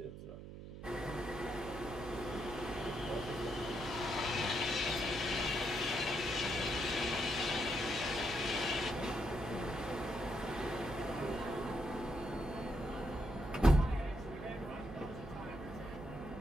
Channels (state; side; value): noise; right; hum, 11 dB below the sound